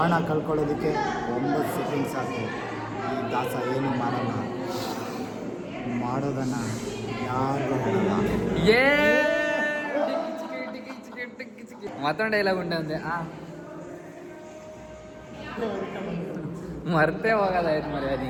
ಕಳ್ಕೊಳ್ಳೋದಕ್ಕೆ 9 ಸೆಕೆಂಡ್ ಸಾಕು. ಈ ದಾಸ ಏನು ಮಾಡಲ್ಲ, ಮಾಡೋದನ್ನ ಯಾರು ಹೇಳಲ್ಲ. ಮತ್ತೊಂದು ಡೈಲಾಗ್ ಉಂಟು ಅಂದೆ. ಮರ್ತೇ ಹೋಗೋದಾಯ್ತು ಮರಿ ಅದು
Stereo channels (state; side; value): identical; both; correlation 1.00